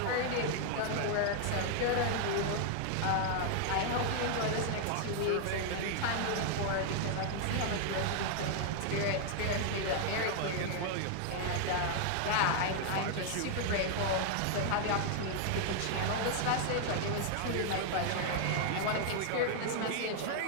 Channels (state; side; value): different; both; correlation 0.00